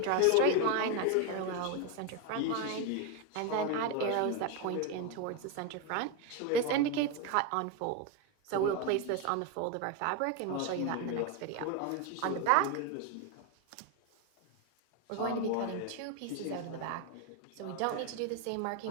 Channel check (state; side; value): different; both; correlation 0.02